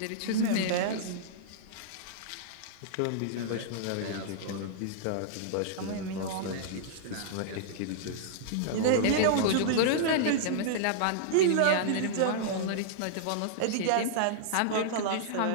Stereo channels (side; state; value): both; different; correlation -0.02